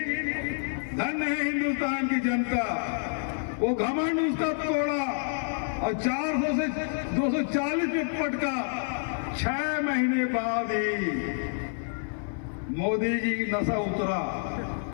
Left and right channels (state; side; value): silent; right; 56 dB below the other